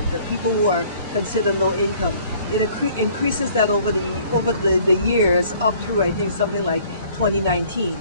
the people who are considered low income. It increases that over the years up through, I think, something like 2019.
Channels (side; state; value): both; inverted; correlation -0.56